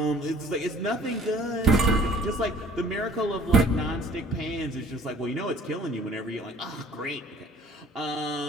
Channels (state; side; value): normal; both; correlation 0.53